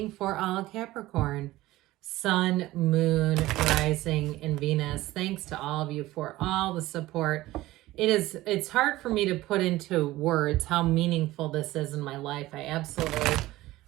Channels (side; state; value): left; quieter; 17.3 dB